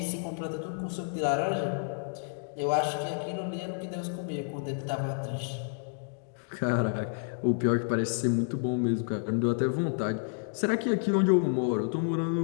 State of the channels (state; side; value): silent; right; digital silence